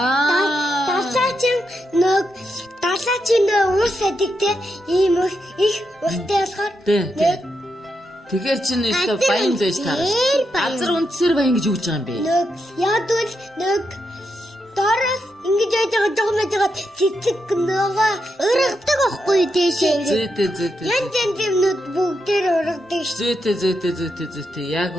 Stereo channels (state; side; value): normal; both; correlation 0.83